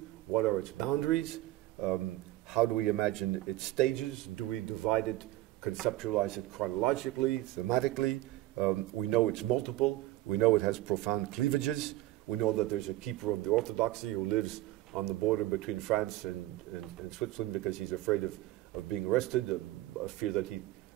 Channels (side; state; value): left; quieter; 16.7 dB